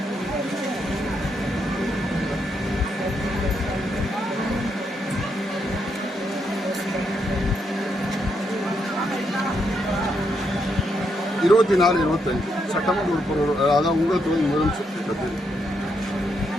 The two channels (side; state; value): both; normal; correlation 0.78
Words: இருபத்தி 25 சட்டமன்ற உறுப்பினர் அதாவது உங்கள் தொழில் முதலமைச்சர் திட்டத்தில்